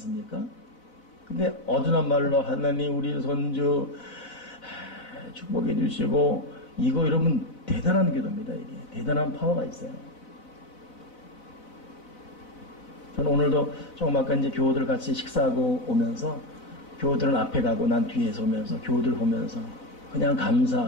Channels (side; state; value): right; late; 4.0 ms